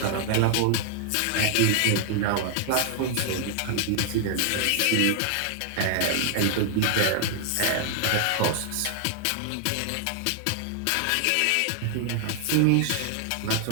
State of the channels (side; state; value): both; different; correlation 0.00